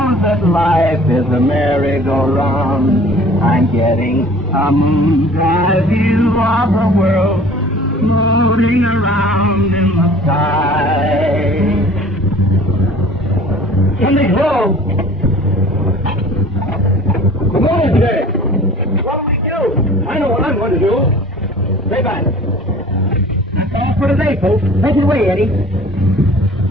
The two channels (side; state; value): both; normal; correlation 0.47